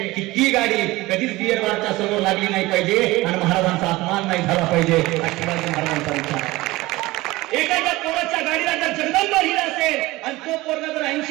की ती गाडी कधीच बियर बारच्या समोर लागली नाही पाहिजे आणि महाराजांचा अपमान नाही झाला पाहिजे. हा शिवाजी महाराजांचा विचार आहे. एखाद्या पोराच्या गाडीला जर जगदंब लिहिलं असेल आणि तो पोरगा जर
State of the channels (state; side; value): quieter; left; 19.7 dB